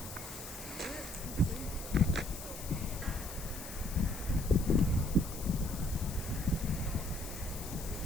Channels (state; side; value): noise; left; hiss, 11 dB below the sound